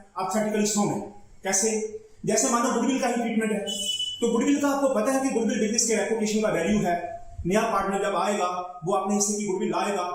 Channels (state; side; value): identical; both; correlation 1.00